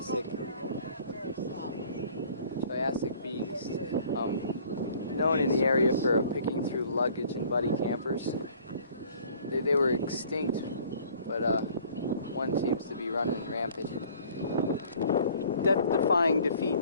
Triassic beast, known in the area for picking through luggage and buddy campers. They were extinct, but one seems to be running rampant. Death-defying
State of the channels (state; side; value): inverted; both; correlation -0.54